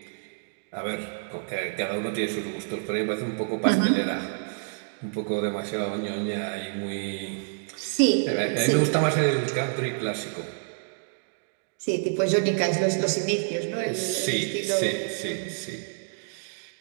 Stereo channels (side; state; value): left; silent; digital silence